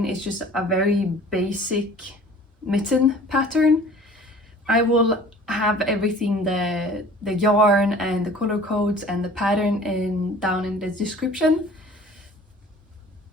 It's just a very basic mitten pattern. I will have everything, the yarn and the color codes and the pattern down in the description.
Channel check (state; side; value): normal; both; correlation 0.47